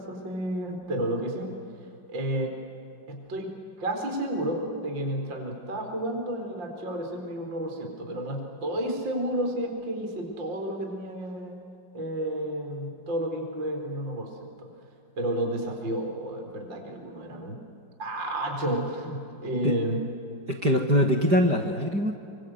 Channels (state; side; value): late; left; 5.0 ms